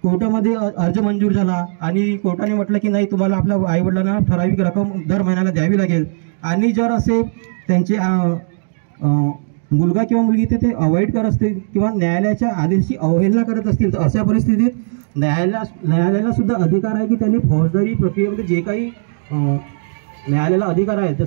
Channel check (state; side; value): silent; left; digital silence